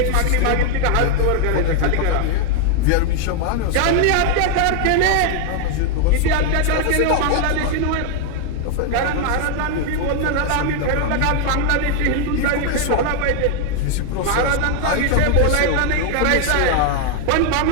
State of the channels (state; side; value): different; both; correlation 0.00